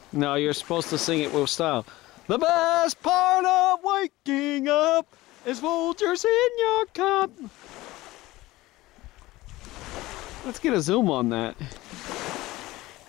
No, you're supposed to sing it with style. The best part of waking up is Folgers in your cup. Let's get a zoom on that.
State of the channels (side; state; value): right; quieter; 18.5 dB